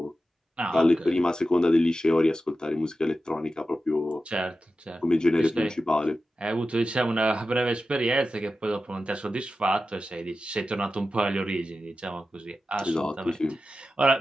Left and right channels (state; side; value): normal; both; correlation 0.92